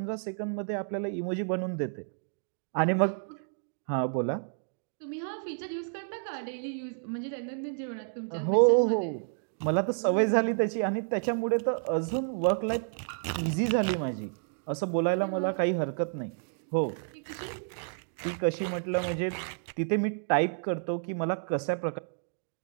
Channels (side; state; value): left; silent; digital silence